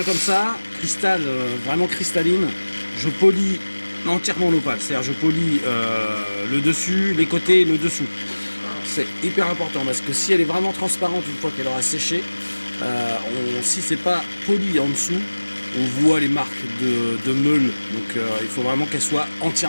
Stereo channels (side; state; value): both; inverted; correlation -1.00